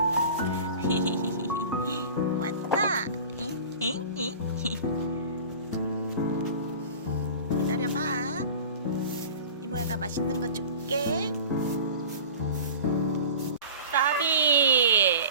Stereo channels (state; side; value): inverted; both; correlation -0.38